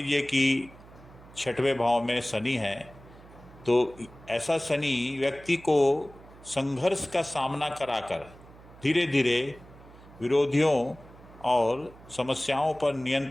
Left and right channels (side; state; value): right; noise; hum, 21 dB below the sound